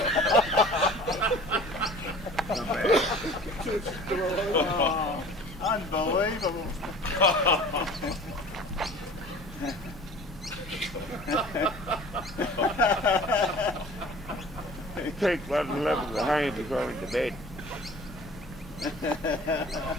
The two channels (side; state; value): both; normal; correlation 0.45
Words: Oh, unbelievable. He takes 11 behind before going to bed.